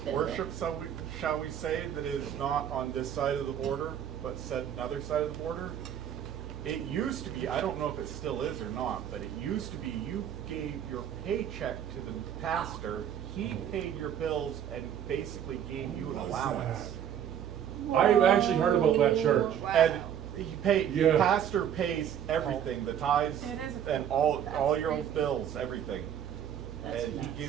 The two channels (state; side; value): quieter; left; 9.5 dB